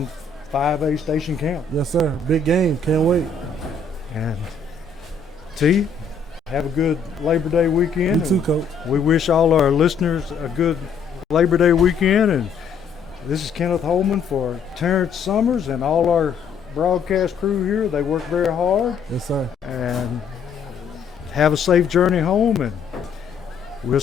5A Station Camp. Yes, sir. Big game. Can't wait. And T, have a good Labor Day weekend. You too, Coach. We wish all our listeners a good Labor Day weekend. And this is Kenneth Holman for Terrence Summers and all our broadcast crew here. They work very hard. Yes, sir. And have a safe journey home, and we'll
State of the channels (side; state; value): right; quieter; 5.1 dB